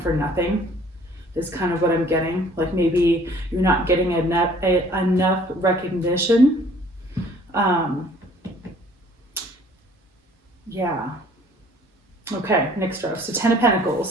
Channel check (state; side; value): normal; both; correlation 0.55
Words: for nothing. Is kind of what I'm getting. Like maybe you're not getting enough recognition. Yeah. Okay, next row. So Ten of